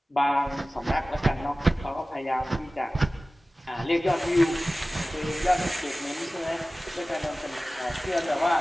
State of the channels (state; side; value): normal; both; correlation 0.97